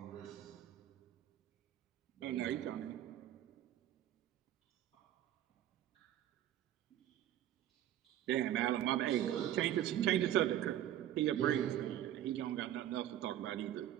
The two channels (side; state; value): left; quieter; 12.0 dB